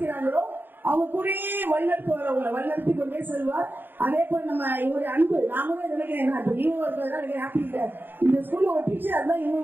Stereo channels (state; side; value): late; left; 0.094 ms